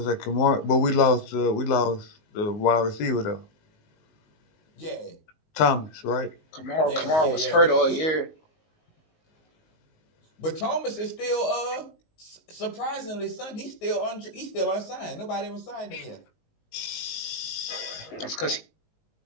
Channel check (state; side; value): late; right; 19 ms